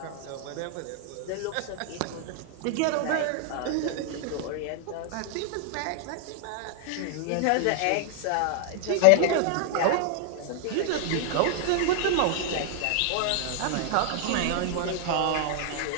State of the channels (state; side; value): different; both; correlation 0.00